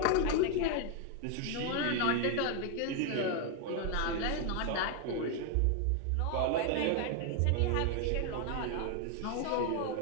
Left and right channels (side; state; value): both; different; correlation 0.01